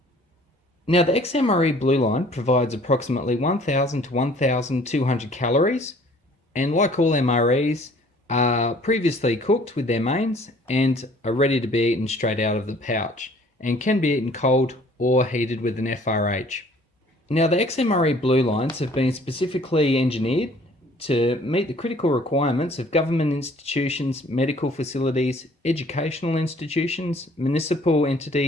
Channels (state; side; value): normal; both; correlation 0.55